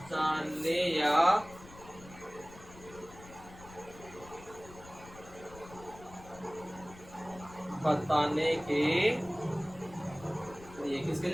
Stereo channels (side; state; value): left; noise; rumble, 19 dB below the sound